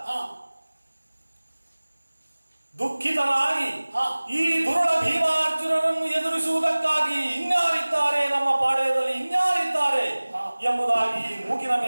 ದುಃಖಿತನಾಗಿ ಈ ದುರುಳ ಭೀಮಾರ್ಜುನರನ್ನು ಎದುರಿಸುವುದಕ್ಕಾಗಿ ಇನ್ಯಾರಿದ್ದಾರೆ, ನಮ್ಮ ಪಾಳ್ಯದಲ್ಲಿ ಇನ್ಯಾರಿದ್ದಾರೆ ಎಂಬುದಾಗಿ ಮೂಗಿನ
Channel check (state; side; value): inverted; both; correlation -1.00